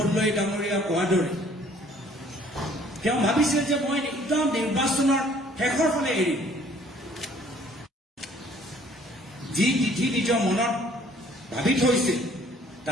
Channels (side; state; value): both; normal; correlation 0.58